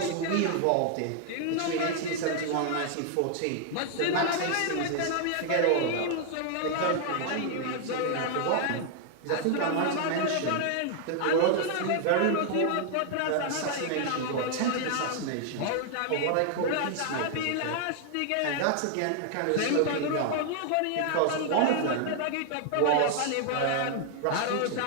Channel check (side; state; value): both; different; correlation 0.00